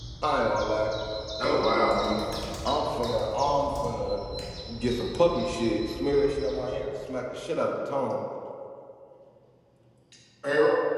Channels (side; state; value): both; identical; correlation 1.00